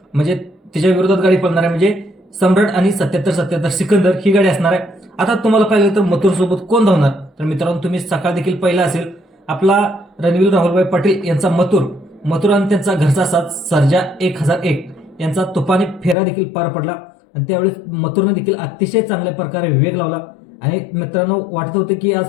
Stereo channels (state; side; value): drops out; right; at 16.2 s